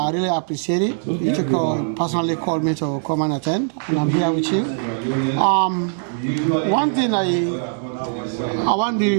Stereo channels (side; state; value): left; silent; digital silence